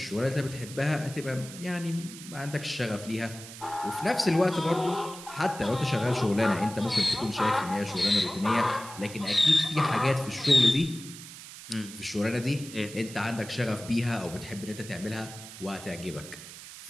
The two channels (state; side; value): noise; right; hiss, 14 dB below the sound